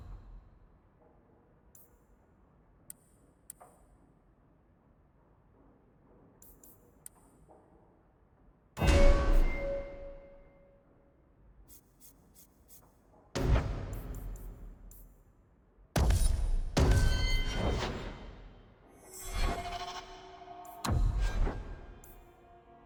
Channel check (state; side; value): identical; both; correlation 1.00